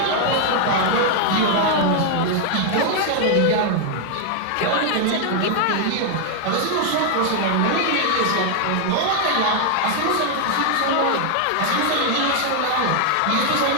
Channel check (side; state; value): both; different; correlation 0.00